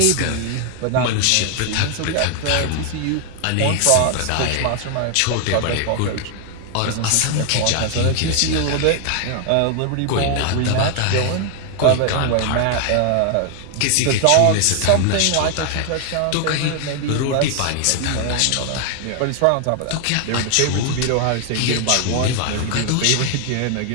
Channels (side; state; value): both; different; correlation 0.00